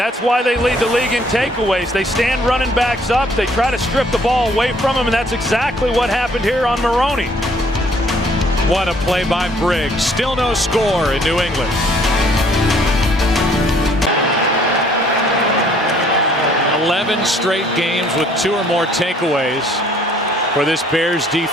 why they lead the league in takeaways. They stand running backs up. They try to strip the ball away from them, and that's exactly what happened here on Maroney. What a play by Briggs. Still no score in New England. 11 straight games with 2 or more takeaways for this Bears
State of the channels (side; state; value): both; normal; correlation 0.61